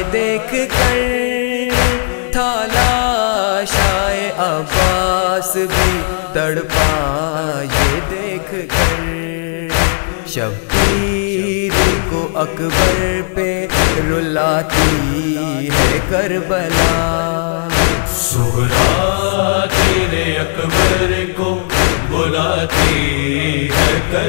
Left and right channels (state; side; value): silent; right; digital silence